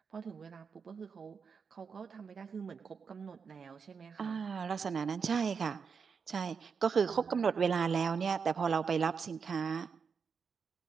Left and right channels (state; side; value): quieter; left; 5.9 dB